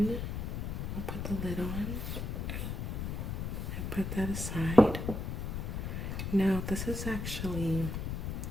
I'll put the lid on and put that aside. Now this is actually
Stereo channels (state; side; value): noise; left; rumble, 3 dB below the sound